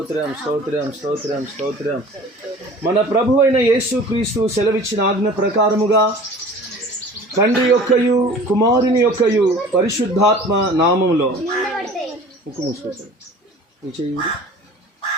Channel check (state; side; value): normal; both; correlation 0.44